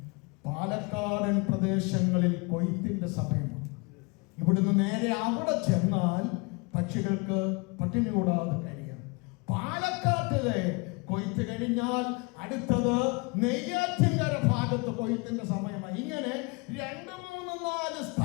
പാലക്കാടൻ പ്രദേശങ്ങളിൽ കൊയ്ത്തിന്റെ സമയമാണ്. ഇവിടുന്ന് നേരെ അവിടെ ചെന്നാൽ പക്ഷികൾക്ക് പട്ടിണി കൂടാതെ കഴിയാം. പാലക്കാട്ടിലെ കൊയ്ത്ത് കഴിഞ്ഞാൽ അടുത്തത് നെയ്യാറ്റിൻകര ഭാഗത്ത് കൊയ്ത്തിന്റെ സമയമായി. ഇങ്ങനെ 2, 3, 4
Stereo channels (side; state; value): right; quieter; 29.2 dB